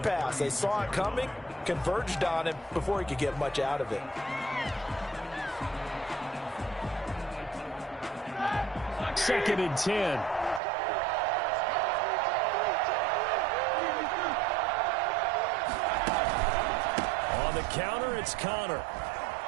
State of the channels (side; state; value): left; drops out; at 10.6 s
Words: pass. They saw it coming, converged on him before he could get much out of it. Second and 10. Counter, it's Connor.